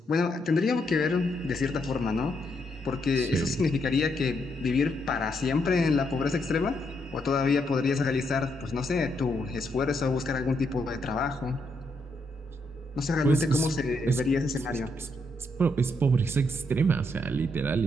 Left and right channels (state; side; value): normal; both; correlation 0.77